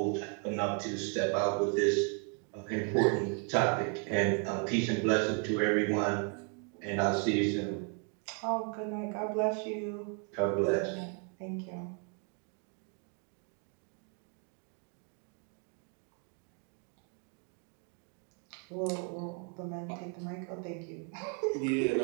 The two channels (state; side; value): quieter; left; 39.9 dB